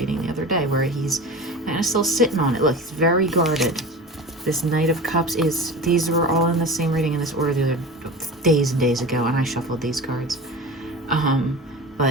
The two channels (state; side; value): normal; both; correlation 0.32